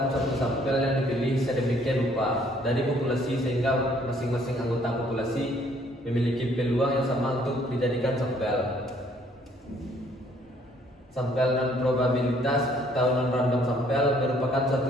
suatu sampel yang dipilih sedemikian rupa dari populasi sehingga masing-masing anggota populasi memiliki peluang yang sama untuk dijadikan sampel. Sampel non probabilitas atau non random sampel merupakan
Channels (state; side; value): normal; both; correlation 0.63